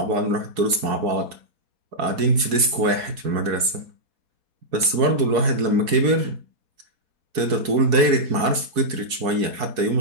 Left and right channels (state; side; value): late; left; 4.7 ms